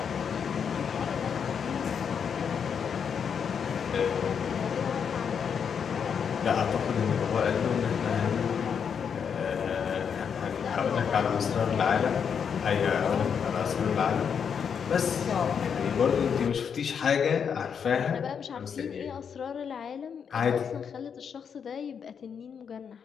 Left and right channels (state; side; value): quieter; right; 7.1 dB